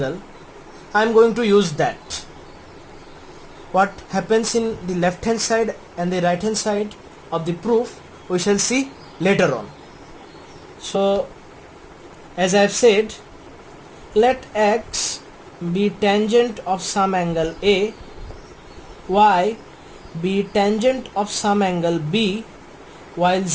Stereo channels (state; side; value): identical; both; correlation 1.00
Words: I am going to use that. What happens in the left hand side and the right hand side of the proof we shall see later on. So as I have said, let x be tangent of some angle A, y be tangent of some angle B, while